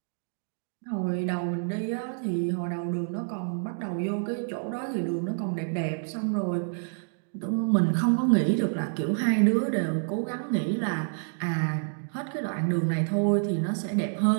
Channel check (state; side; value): silent; left; digital silence